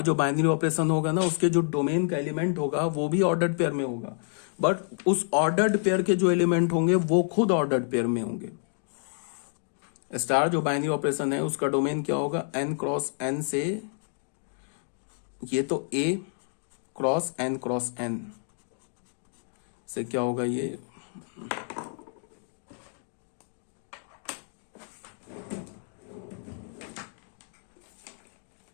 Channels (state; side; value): silent; right; digital silence